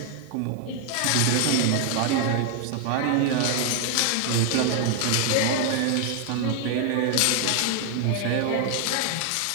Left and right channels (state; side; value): different; both; correlation 0.00